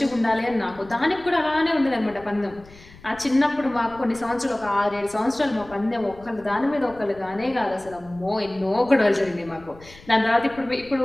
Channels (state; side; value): noise; left; rumble, 22 dB below the sound